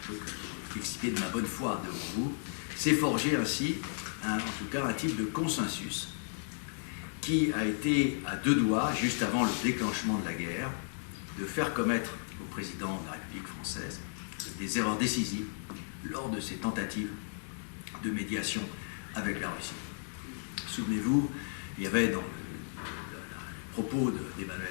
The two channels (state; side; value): silent; right; digital silence